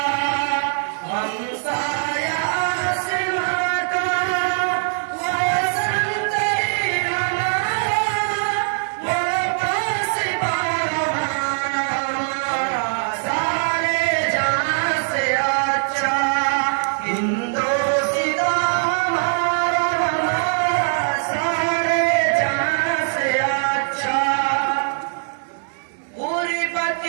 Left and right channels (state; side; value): silent; left; 65 dB below the other